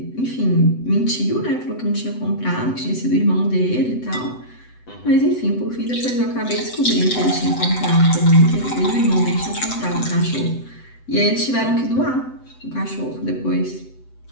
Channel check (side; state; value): right; late; 7.9 ms